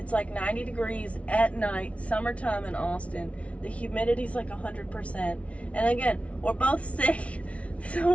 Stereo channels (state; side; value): late; right; 0.063 ms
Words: like 90 degrees at night, summertime in Austin. The humidity's like 100%. And again, we're both sick,